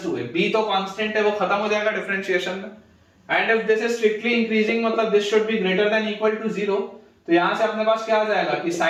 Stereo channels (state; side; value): identical; both; correlation 1.00